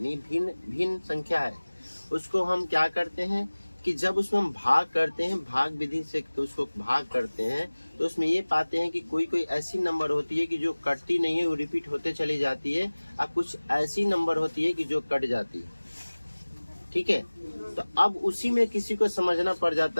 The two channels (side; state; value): both; inverted; correlation -1.00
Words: भिन्न भिन्न संख्या है, उसको हम क्या करते हैं कि जब उसमें हम भाग करते हैं, भाग विधि से तो उसको भाग करते हैं, तो उसमें ये पाते हैं कि कोई कोई ऐसी नंबर होती है कि जो कटती नहीं है, वो रिपीट होते चली जाती है, और कुछ ऐसी नंबर होती है कि जो कट जाती है। ठीक है, तो अब उसी में किसी को समझना पड़